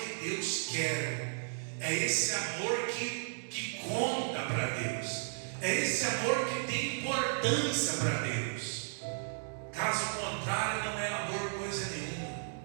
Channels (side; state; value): left; silent; digital silence